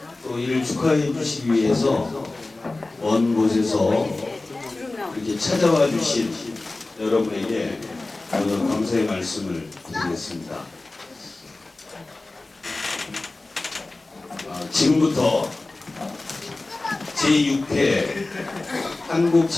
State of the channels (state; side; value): quieter; right; 3.1 dB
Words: 또 이를 축하해 주시기 위해서 먼 곳에서 이렇게 찾아와 주신 여러분에게 오늘 감사의 말씀을 드리겠습니다. 지금부터 제6회